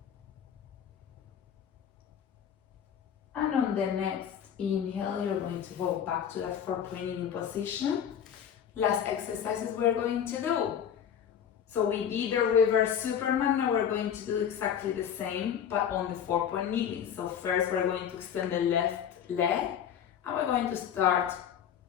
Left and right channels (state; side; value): quieter; right; 8.7 dB